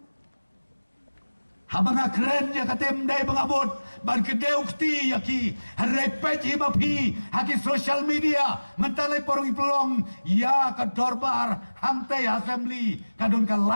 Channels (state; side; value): inverted; both; correlation -1.00